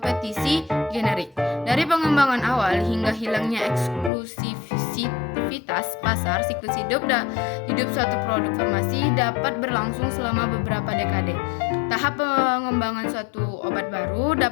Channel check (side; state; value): right; drops out; at 4.1 s